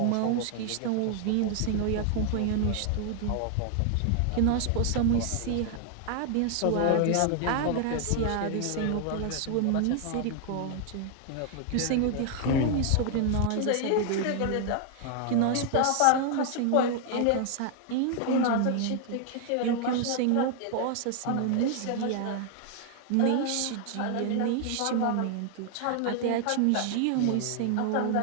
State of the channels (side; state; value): both; different; correlation 0.00